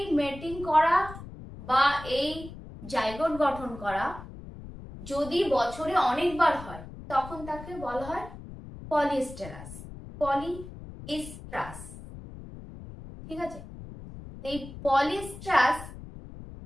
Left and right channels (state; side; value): noise; left; rumble, 14 dB below the sound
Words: মেটিং করা বা এই জাইগোট গঠন করা যদি বছরে অনেকবার হয় তখন তাকে বলা হয় পলিএস্টেরাস, পলিএস্ট্রাস। ঠিক আছে, এই পলিএস্ট্রাস